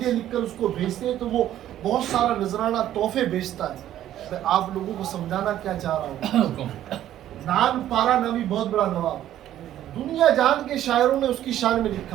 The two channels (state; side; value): quieter; left; 12.2 dB